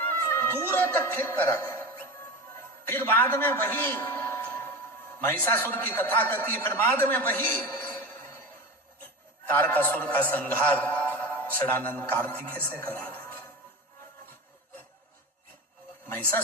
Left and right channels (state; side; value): normal; both; correlation 0.27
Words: तक फेंक कर आ गया। फिर बाद में वही महिषासुर की कथा करती है, फिर बाद में वही तारकासुर का संहार षडानंद कार्तिकेय से करा देते।